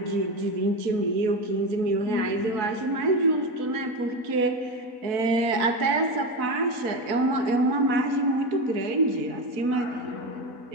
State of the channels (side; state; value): left; late; 4.0 ms